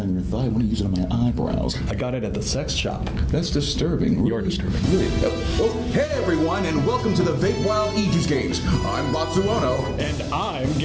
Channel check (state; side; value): identical; both; correlation 1.00